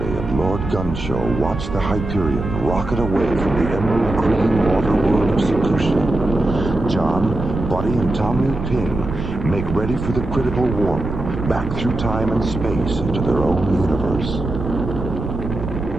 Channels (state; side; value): noise; right; rumble, 6 dB below the sound